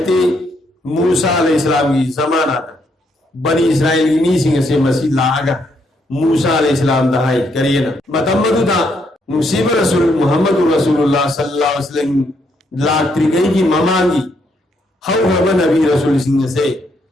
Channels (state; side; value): normal; both; correlation 0.74